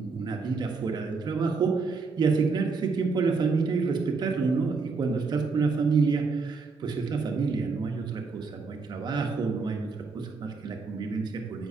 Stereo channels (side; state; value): left; quieter; 4.5 dB